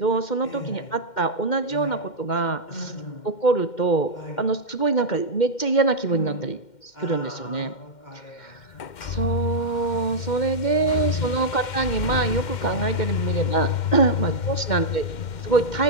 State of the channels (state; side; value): late; right; 2.1 ms